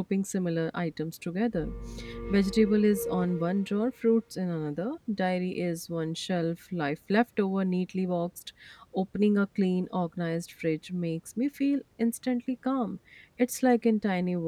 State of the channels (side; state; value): both; identical; correlation 1.00